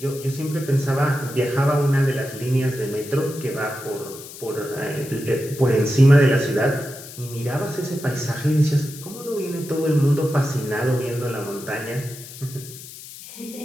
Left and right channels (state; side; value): noise; left; hiss, 15 dB below the sound